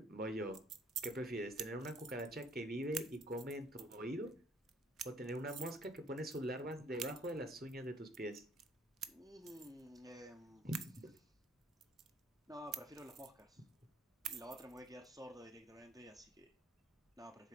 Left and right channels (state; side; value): normal; both; correlation 0.61